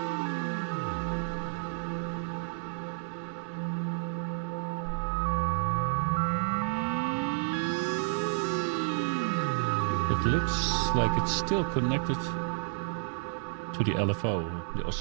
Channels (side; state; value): left; silent; 57 dB below the other